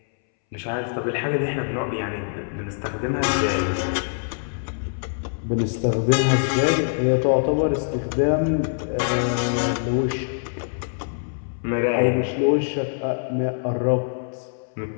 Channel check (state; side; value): silent; right; 62 dB below the other